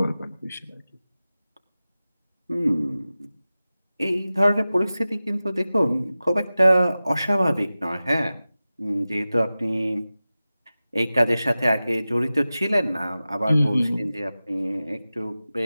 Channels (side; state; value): both; inverted; correlation -0.95